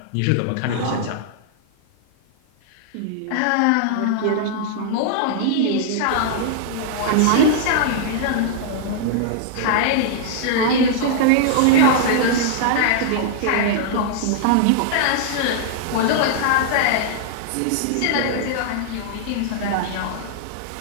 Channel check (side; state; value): both; different; correlation -0.01